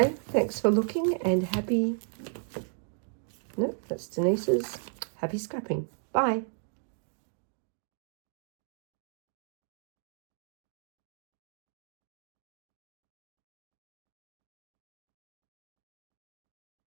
thanks for looking and happy... No, that's Denise's. Happy scrapping. Bye.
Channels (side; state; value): left; silent; 55 dB below the other